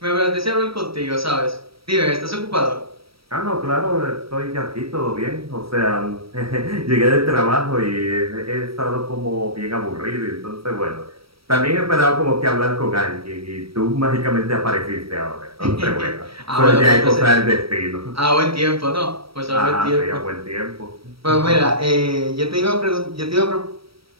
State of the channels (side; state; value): left; late; 0.75 ms